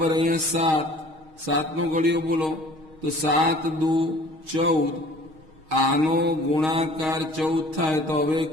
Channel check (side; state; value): left; late; 6.4 ms